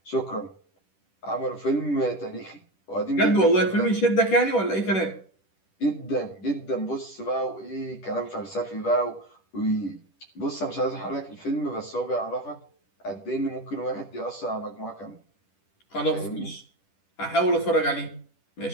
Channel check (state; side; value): late; right; 10 ms